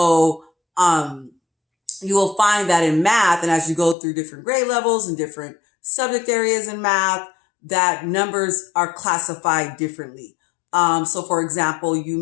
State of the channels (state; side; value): drops out; right; at 4.0 s